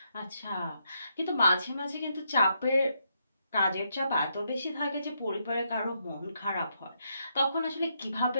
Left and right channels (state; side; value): inverted; both; correlation -0.78